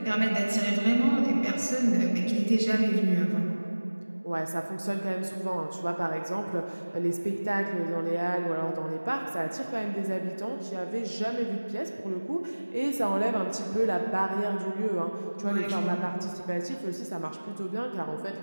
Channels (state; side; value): inverted; both; correlation -1.00